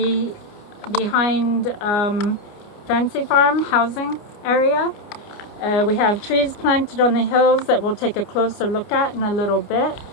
Fancy Farm housing area. We have trees planted on the hills that we'll take a closer look at in a little bit.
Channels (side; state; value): right; late; 29 ms